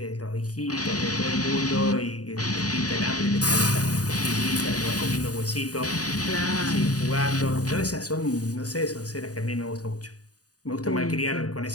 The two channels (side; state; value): right; late; 0.68 ms